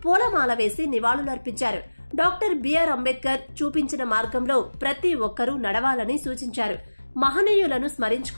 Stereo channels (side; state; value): both; inverted; correlation -1.00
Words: పూలమాల వేసి నివాళులర్పించారు. డాక్టర్ బిఆర్ అంబేద్కర్ చూపించిన మార్గంలో ప్రతి ఒక్కరూ నడవాలని సూచించారు. మహనీయులను